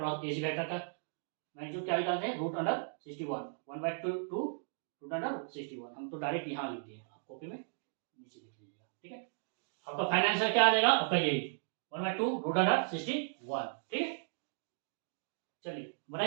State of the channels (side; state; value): left; silent; digital silence